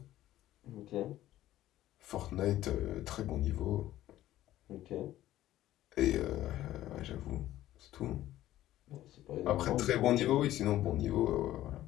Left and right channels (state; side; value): quieter; right; 14.1 dB